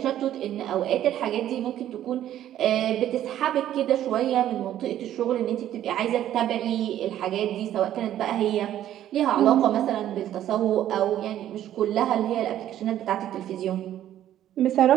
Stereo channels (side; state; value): left; quieter; 11.9 dB